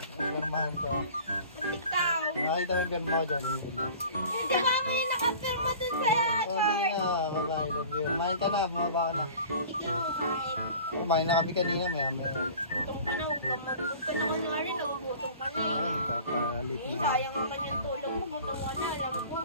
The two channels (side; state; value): both; inverted; correlation -0.43